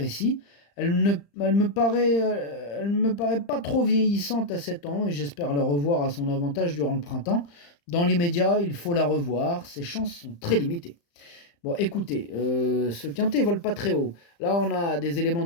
ici. Elle me paraît pas trop vieillissante à 7 ans et j'espère la revoir à son avantage durant le printemps. Dans l'immédiat, il faut la revoir, ses chances sont très limitées. Bon, écoutez, ce quintet vole pas très haut. Là, on a des éléments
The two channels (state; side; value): late; right; 35 ms